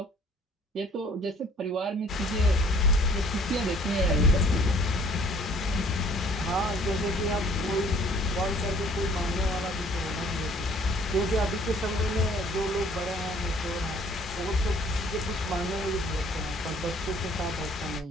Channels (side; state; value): both; normal; correlation 0.56